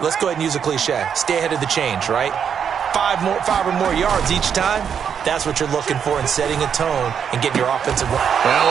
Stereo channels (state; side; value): quieter; left; 7.6 dB